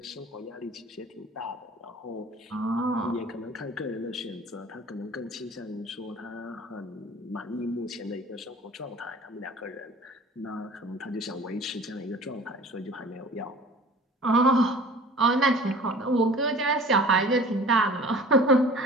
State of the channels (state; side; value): normal; both; correlation 0.44